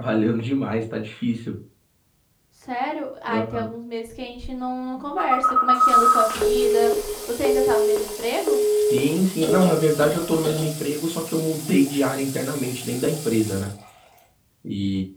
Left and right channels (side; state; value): both; identical; correlation 1.00